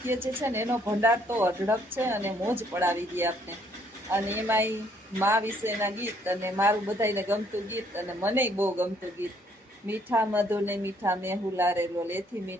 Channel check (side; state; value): both; normal; correlation 0.66